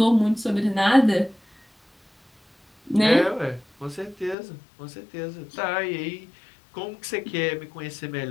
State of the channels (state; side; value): drops out; right; at 4.4 s